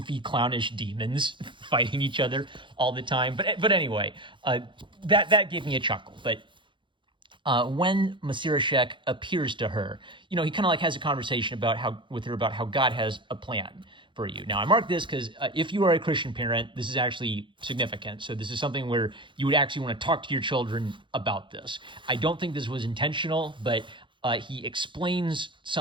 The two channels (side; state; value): left; late; 0.23 ms